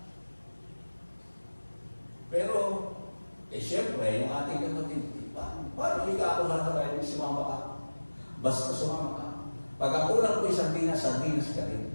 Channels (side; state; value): both; inverted; correlation -1.00